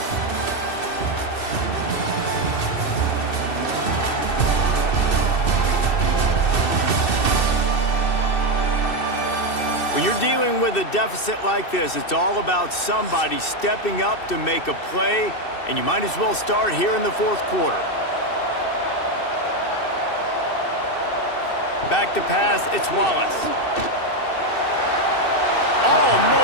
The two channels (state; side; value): late; right; 2.6 ms